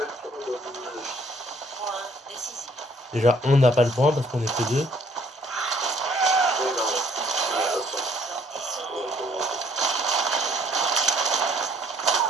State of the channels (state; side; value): normal; both; correlation 0.63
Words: le temps de... Point décisif. Déjà, on n'a pas le point parce qu'on est que deux.